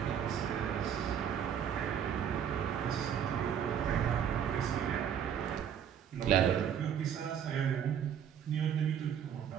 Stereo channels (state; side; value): quieter; left; 8.7 dB